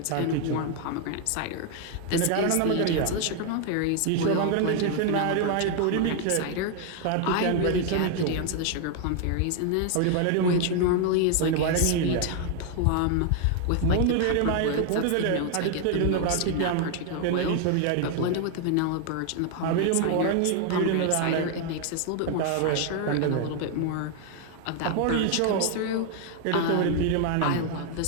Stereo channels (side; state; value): both; different; correlation 0.00